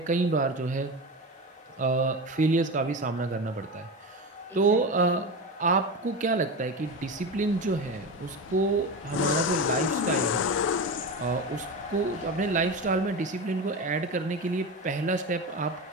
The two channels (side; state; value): both; normal; correlation 0.23